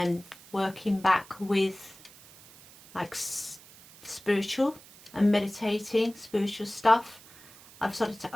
working back with like spiritual and meditating, spiritual stuff, I've started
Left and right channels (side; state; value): right; noise; hiss, 22 dB below the sound